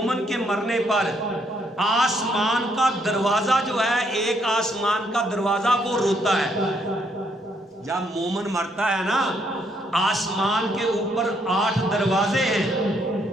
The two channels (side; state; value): both; normal; correlation 0.72